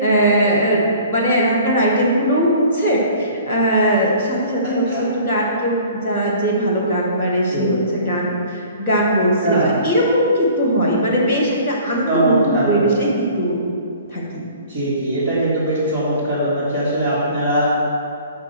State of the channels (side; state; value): both; inverted; correlation -0.48